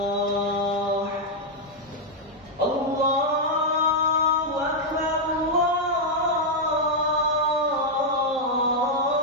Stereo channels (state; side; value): normal; both; correlation -0.02